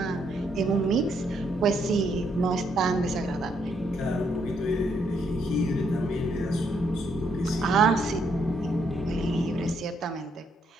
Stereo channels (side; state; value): both; normal; correlation 0.74